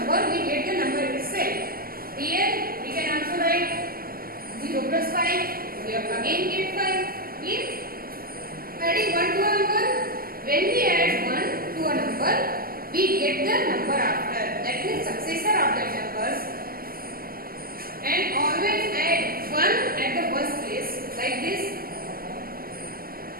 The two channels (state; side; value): late; left; 0.42 ms